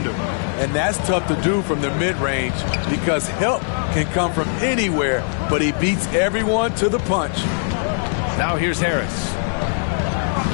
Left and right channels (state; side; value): silent; right; digital silence